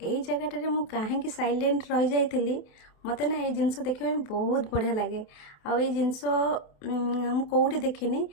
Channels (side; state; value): right; late; 28 ms